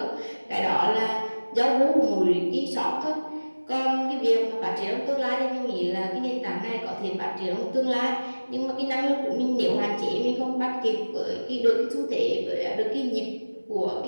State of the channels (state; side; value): inverted; both; correlation -1.00